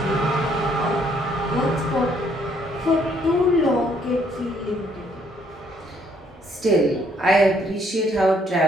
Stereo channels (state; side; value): normal; both; correlation 0.67